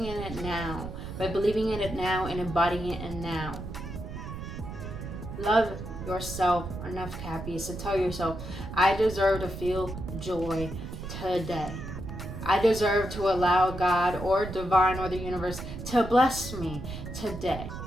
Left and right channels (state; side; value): noise; right; rumble, 8 dB below the sound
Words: in it now. By believing in it now and embodying it now. Love yourself enough, Cappies, to tell yourself, I deserve to feel joy today. I deserve to allow God or divine or the universe to bless me today.